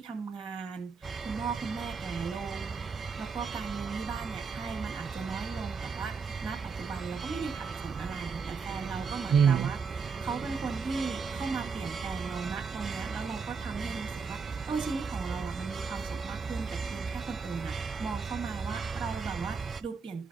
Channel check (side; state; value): left; quieter; 5.3 dB